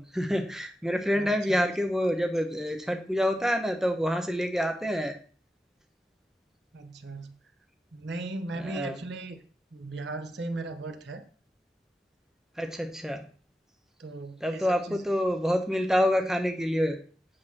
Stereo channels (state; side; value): normal; both; correlation 0.90